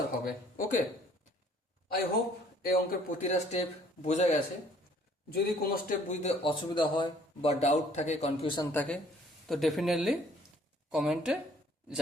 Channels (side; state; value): both; normal; correlation 0.59